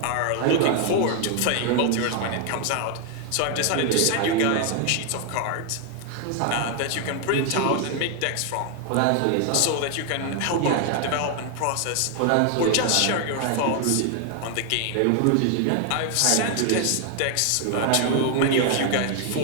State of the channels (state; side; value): different; both; correlation 0.00